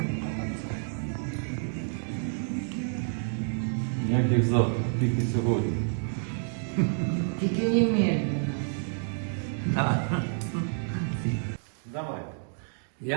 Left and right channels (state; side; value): silent; left; digital silence